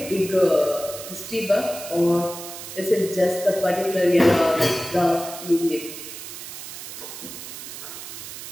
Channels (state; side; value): noise; right; hiss, 11 dB below the sound